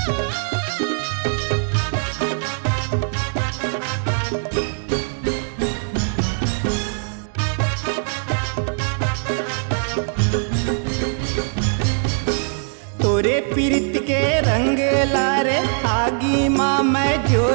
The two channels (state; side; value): silent; left; 60 dB below the other